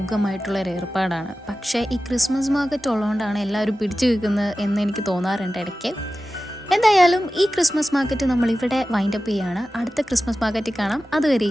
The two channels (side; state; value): both; normal; correlation 0.95